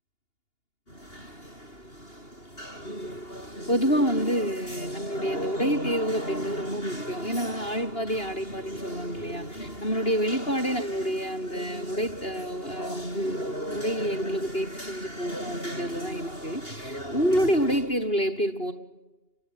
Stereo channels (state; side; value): late; right; 2.8 ms